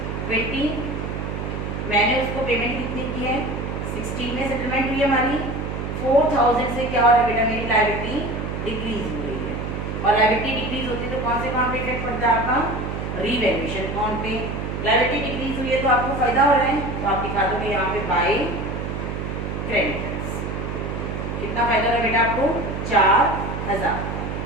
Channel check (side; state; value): right; noise; hum, 4 dB below the sound